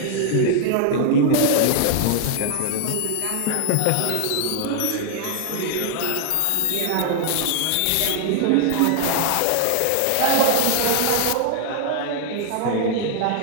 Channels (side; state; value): both; different; correlation -0.01